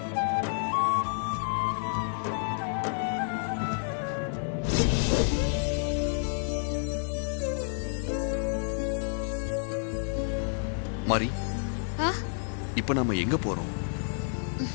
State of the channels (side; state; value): right; silent; 58 dB below the other